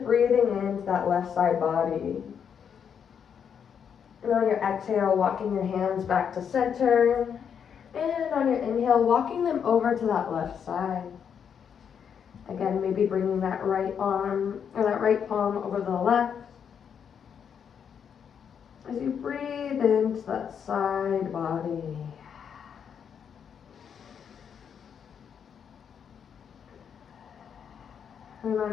breathing into that left side body. And on your exhale, walking your hands back to center. And on your inhale, walking them over to that left side. Again, maybe bringing that right arm or that right palm over the left. As you breathe into that side body. And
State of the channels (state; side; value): quieter; right; 7.6 dB